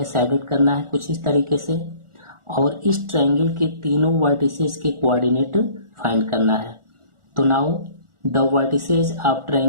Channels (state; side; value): late; left; 1.4 ms